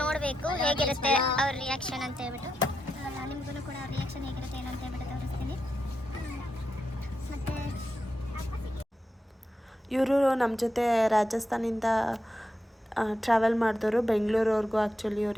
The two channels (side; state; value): both; normal; correlation 0.86